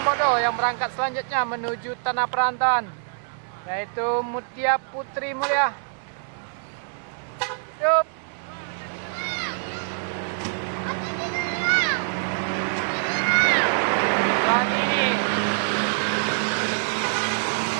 yang berangkat selanjutnya menuju tanah perantauan, yaitu Mutia Putri Mulia. Yup. Saat ini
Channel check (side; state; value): left; silent; digital silence